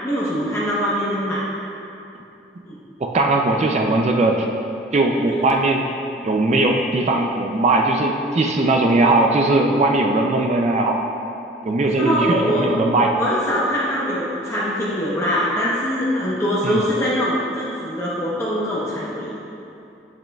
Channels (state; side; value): normal; both; correlation 0.43